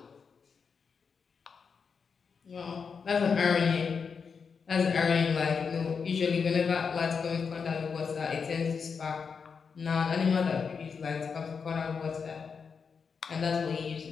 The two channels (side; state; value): right; quieter; 5.8 dB